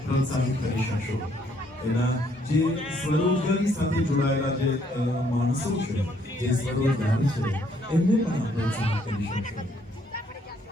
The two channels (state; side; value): normal; both; correlation 0.68